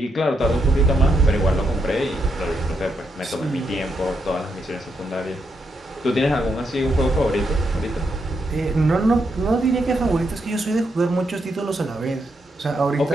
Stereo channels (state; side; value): normal; both; correlation 0.80